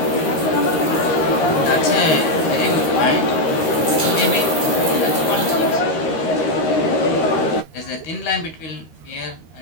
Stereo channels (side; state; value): right; late; 13 ms